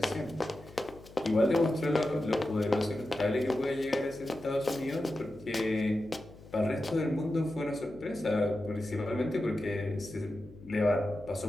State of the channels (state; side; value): noise; left; hum, 20 dB below the sound